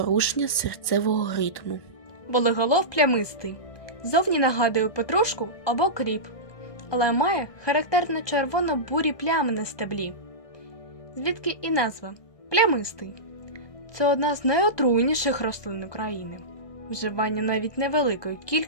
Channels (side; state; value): right; late; 1.2 ms